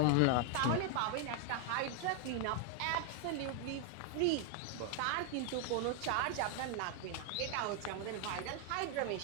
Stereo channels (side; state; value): both; different; correlation 0.00